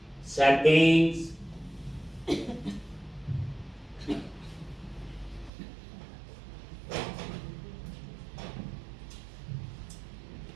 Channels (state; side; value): drops out; left; at 5.5 s